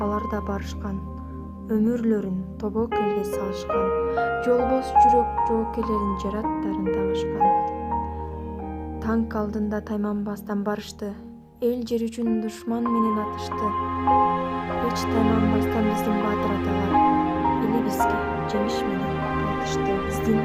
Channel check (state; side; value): identical; both; correlation 1.00